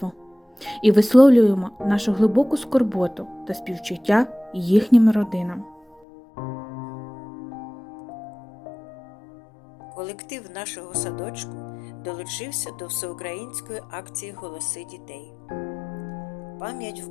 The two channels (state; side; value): drops out; right; at 6.0 s